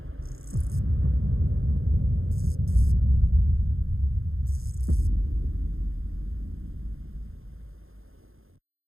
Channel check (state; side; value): late; left; 0.60 ms